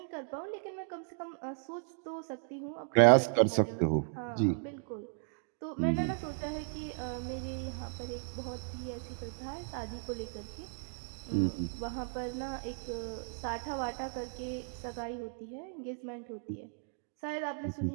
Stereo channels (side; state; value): left; silent; 54 dB below the other